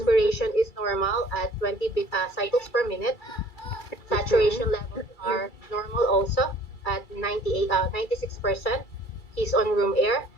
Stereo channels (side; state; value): right; late; 2.3 ms